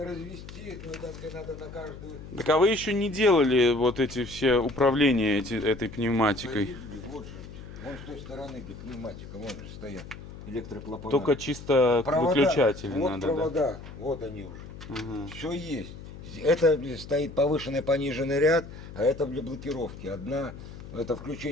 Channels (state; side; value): noise; left; hum, 14 dB below the sound